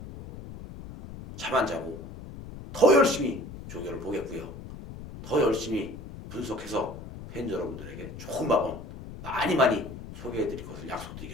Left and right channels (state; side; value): noise; left; rumble, 12 dB below the sound